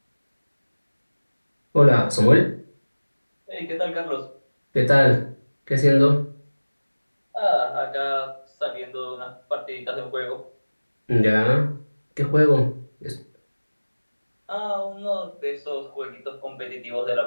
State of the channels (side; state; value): both; inverted; correlation -1.00